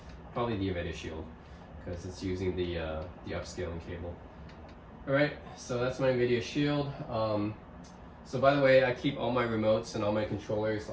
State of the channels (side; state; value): both; identical; correlation 1.00